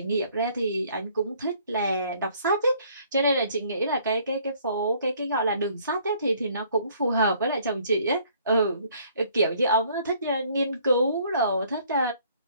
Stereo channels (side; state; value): both; inverted; correlation -0.60